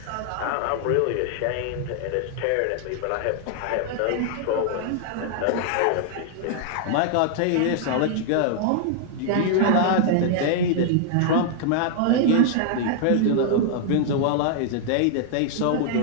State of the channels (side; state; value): both; different; correlation 0.00